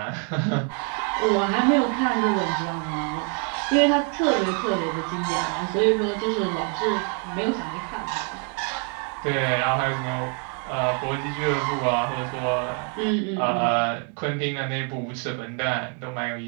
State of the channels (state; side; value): quieter; left; 38.0 dB